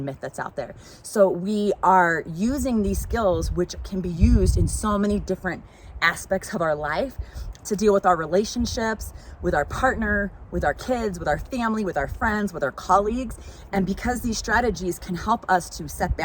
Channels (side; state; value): both; identical; correlation 1.00